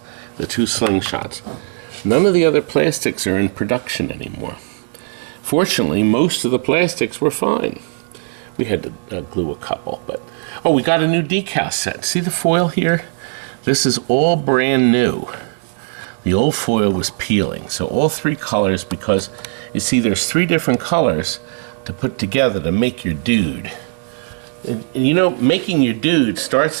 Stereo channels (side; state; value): left; silent; 59 dB below the other